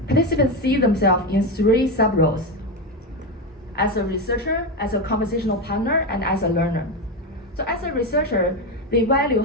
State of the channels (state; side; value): normal; both; correlation 0.13